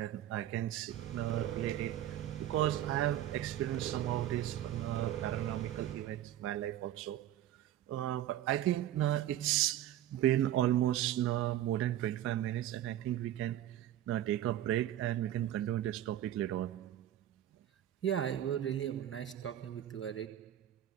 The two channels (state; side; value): quieter; left; 12.4 dB